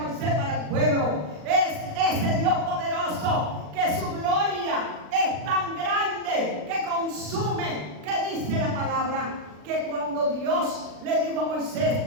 para el pueblo. Es ese Dios poderoso que su gloria es tan grande que consume, que dice la palabra, que cuando Dios le dijo a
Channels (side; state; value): left; late; 39 ms